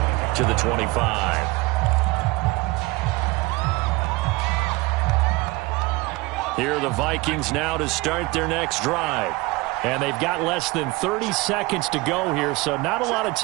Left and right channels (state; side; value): quieter; left; 22.5 dB